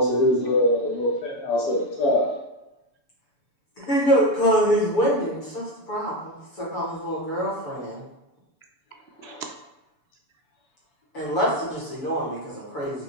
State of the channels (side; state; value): right; late; 6.9 ms